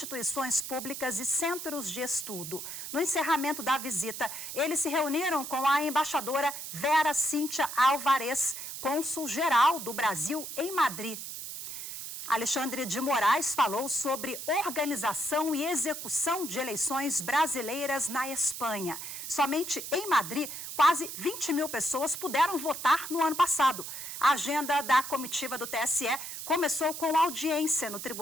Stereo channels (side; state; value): right; noise; hiss, 8 dB below the sound